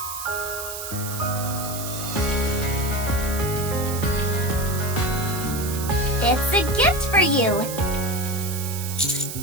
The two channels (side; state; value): right; noise; hiss, 7 dB below the sound